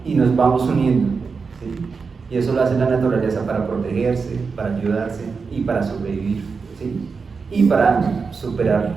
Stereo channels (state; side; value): quieter; left; 5.0 dB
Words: y nos vamos uniendo, ¿sí? Y eso lo hace la naturaleza para protegerse, para ayudarse y para sobrevivir, ¿sí? Y para superar